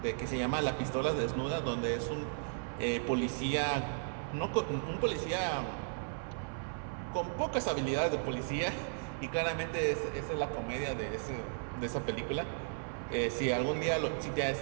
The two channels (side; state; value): left; silent; 54 dB below the other